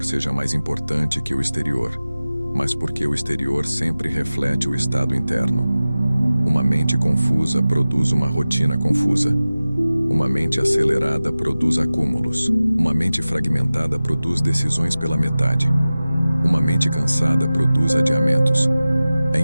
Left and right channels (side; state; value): both; inverted; correlation -0.97